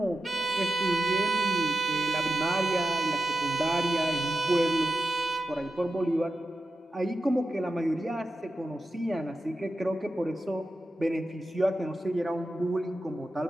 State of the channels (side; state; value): both; normal; correlation 0.91